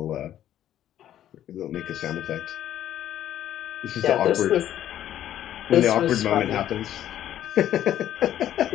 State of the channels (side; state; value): right; quieter; 11.6 dB